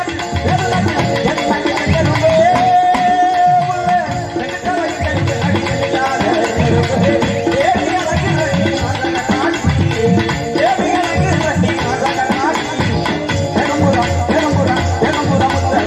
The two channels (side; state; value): both; identical; correlation 1.00